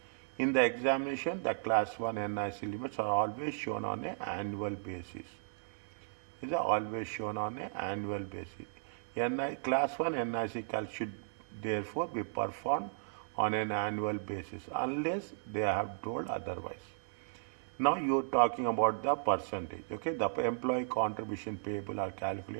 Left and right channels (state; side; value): silent; left; digital silence